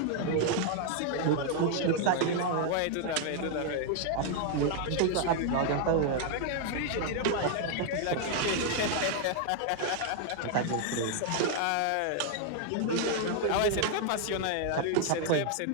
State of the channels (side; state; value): both; different; correlation 0.00